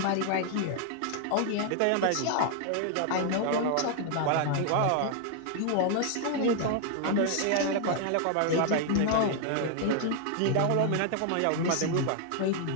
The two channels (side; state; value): both; different; correlation 0.00